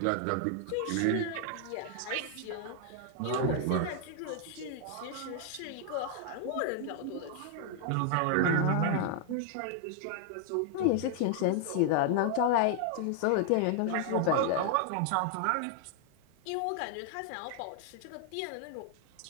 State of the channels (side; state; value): both; different; correlation 0.00